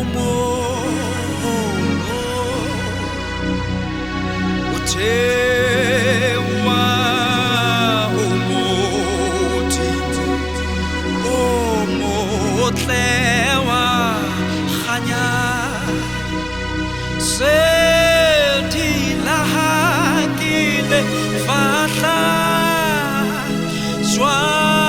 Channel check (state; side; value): noise; right; rumble, 18 dB below the sound